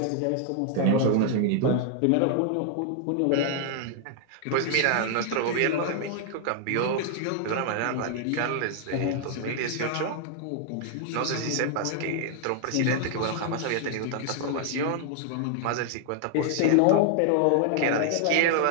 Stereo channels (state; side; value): different; both; correlation 0.00